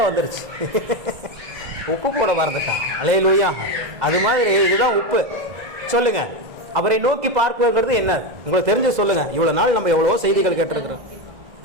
வந்துருச்சு. உப்பு போட மறந்துட்டான். அல்லேலூயா. அது மாதிரி இதுதான் உப்பு. சொல்லுங்க, அவரை நோக்கி பார்க்கிறது என்ன உங்களுக்கு தெரிஞ்சு சொல்லுங்க. இவ்வளோ நாள் நம்ம எவ்வளோ செய்திகள் கேட்டிருக்கிறோம்.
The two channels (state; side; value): late; left; 2.0 ms